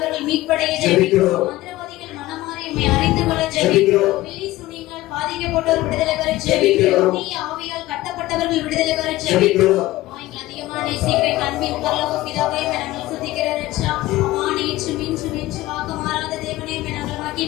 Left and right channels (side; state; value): right; quieter; 17.2 dB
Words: மீட்படைய ஜெபிக்கிறோம். மந்திரவாதிகள் மனமாறி உம்மை அறிந்து கொள்ள ஜெபிக்கிறோம். பில்லி சுனியால் பாதிக்கப்பட்டோர் விடுதலை பெற ஜெபிக்கிறோம். தீய ஆவியால் கட்டப்பட்டவர்கள் விடுதலை பெற ஜெபிக்கிறோம். அதிகமான சீக்கிரம் அன்பின் பரலோக பிதாவே, நாங்கள் துதிக்கிற ரட்சா. நேற்று மின்று வாக்கு மாறாத தேவனே, நாங்கள்